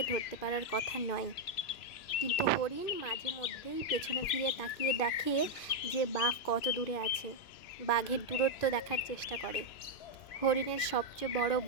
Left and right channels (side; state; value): right; late; 2.5 ms